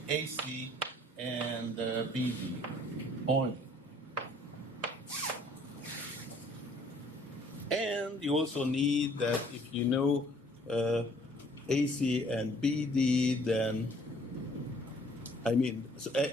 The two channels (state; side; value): normal; both; correlation 0.59